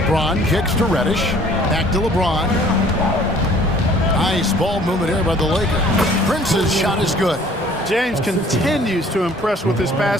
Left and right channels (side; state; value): both; normal; correlation 0.54